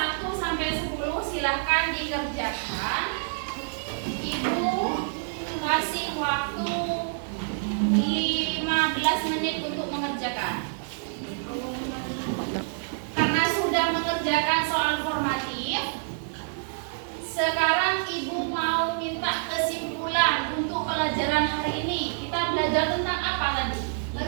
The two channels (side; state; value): left; silent; digital silence